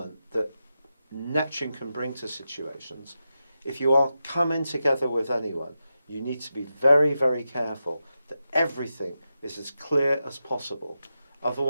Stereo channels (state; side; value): inverted; both; correlation -0.89